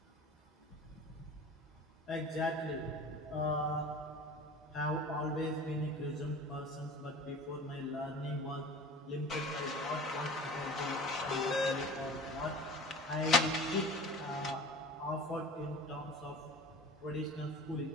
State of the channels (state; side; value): normal; both; correlation 0.39